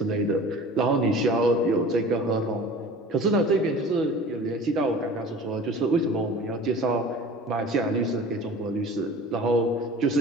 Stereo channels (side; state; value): both; normal; correlation 0.41